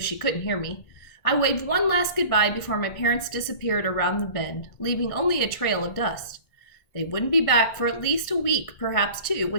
couldn't hear me. I waved one last goodbye before my parents disappeared around the bend, leaving only a trail of dust. They wouldn't be back for at least a week, perhaps two,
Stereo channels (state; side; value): late; right; 1.6 ms